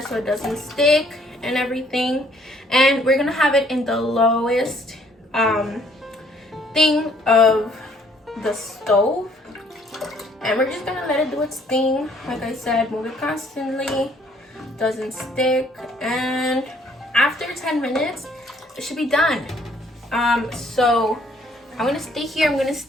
so it doesn't stick and everything. And we're gonna have it in the lowest thing of the stove, and we're just gonna let it do its thing. Like I said, move it constantly, doesn't stick, and after 10 minutes it should be done. So I'm gonna stay here, I'm gonna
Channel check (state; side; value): normal; both; correlation 0.63